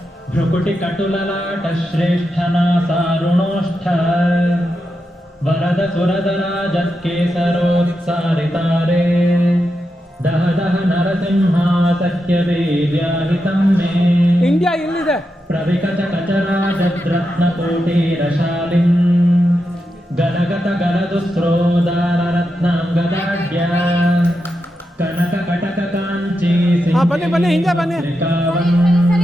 ಭ್ರುಕುಟಿ ಕಟುಲಲಾಟ ಶ್ರೇಷ್ಠನಾ ಸಾರುಣೋಷ್ಠ ವರದ ಸುರದರಾಜತ್ಕೇಸರೋತ್ಸಾರಿತಾರೆ ದಹ ದಹ ನರಸಿಂಹಾ ಸತ್ಯವೀರ್ಯಾಹಿತಂ ಮೇ ಇಂಡಿಯಾ ಇಲ್ಲಿದೆ ಪ್ರವಿಕಟ ಕಚರಾಜದ್ರತ್ನಕೋಟೀರಶಾಲಿಂ ಗಲಗತ ಗಲದುಸ್ರೋದಾರರತ್ನಾಂಗದಾಢ್ಯ ಕನಕ ಕಟಕ ಕಾಂಚಿ ಬನ್ನಿ ಬನ್ನಿ ಹಿಂದೆ ಬನ್ನಿ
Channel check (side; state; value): both; normal; correlation 0.87